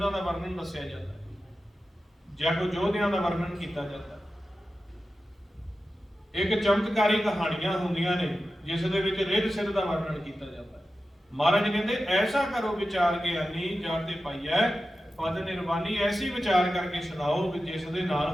ਦਾ ਵਰਣਨ ਦੱਸਿਆ ਜਾਂਦਾ ਹੈ ਜਾਂ ਕੋਈ ਯੋਧਿਆਂ ਦਾ ਵਰਣਨ ਕੀਤਾ ਜਾਂਦਾ। ਇੱਕ ਚਮਤਕਾਰੀ ਕਹਾਣੀਆਂ ਹੁੰਦੀਆਂ ਨੇ ਜਿਸ ਦੇ ਵਿੱਚ ਰਿੱਧ ਸਿੱਧ ਦਾ ਵਰਣਨ ਕੀਤਾ ਜਾਂਦਾ ਹੈ। ਮਹਾਰਾਜ ਕਹਿੰਦੇ ਐਸਾ ਕਰੋ ਵਿਚਾਰ ਗਿਆਨੀ ਜਾਤੇ ਪਾਈਐ ਪਦ ਨਿਰਵਾਣੀ। ਐਸੀ ਵਿਚਾਰ ਕਰਕੇ ਸੁਣਾਓ ਵੀ ਜਿਸ ਦੇ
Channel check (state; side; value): normal; both; correlation 0.93